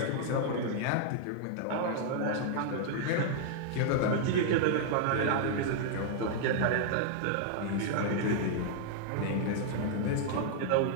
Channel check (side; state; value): both; different; correlation -0.01